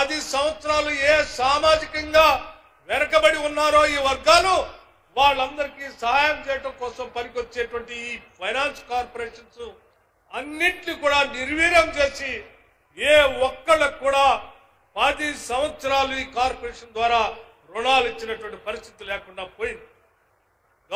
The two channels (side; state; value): both; identical; correlation 1.00